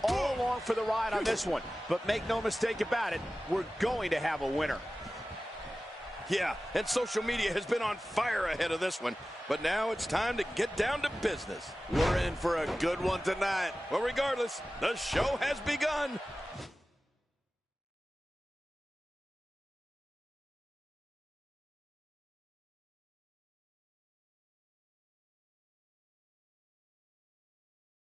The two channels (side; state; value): both; normal; correlation 0.96